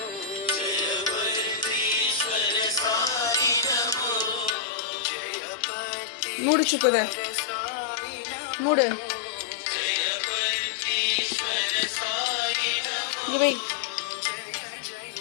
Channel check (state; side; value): drops out; right; at 4.5 s